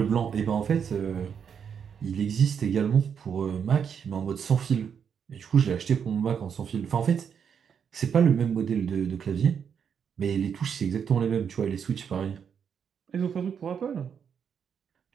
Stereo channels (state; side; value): quieter; left; 7.3 dB